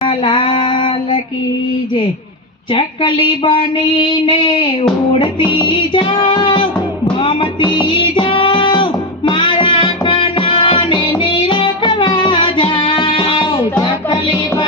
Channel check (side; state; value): both; normal; correlation 0.11